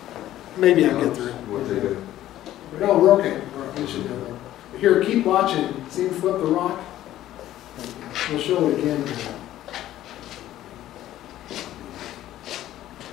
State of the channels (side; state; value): right; quieter; 13.5 dB